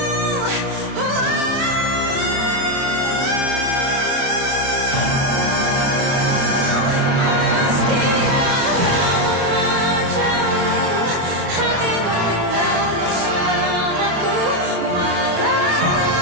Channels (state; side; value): late; left; 29 ms